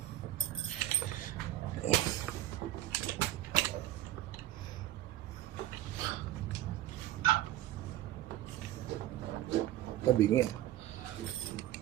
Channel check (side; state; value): left; quieter; 13.9 dB